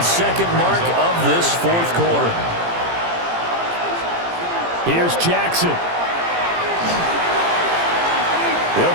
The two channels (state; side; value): late; left; 17 ms